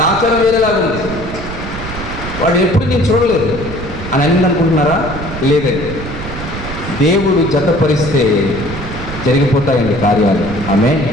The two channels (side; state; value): right; noise; rumble, 9 dB below the sound